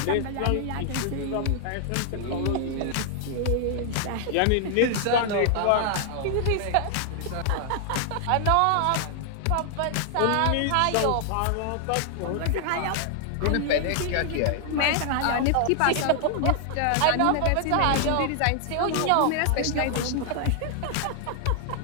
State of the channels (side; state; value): both; different; correlation 0.00